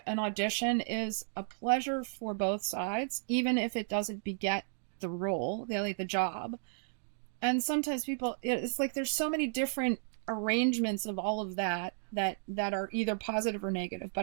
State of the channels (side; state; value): left; silent; digital silence